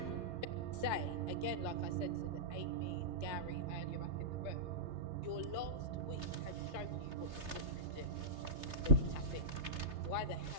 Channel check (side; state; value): left; late; 3.3 ms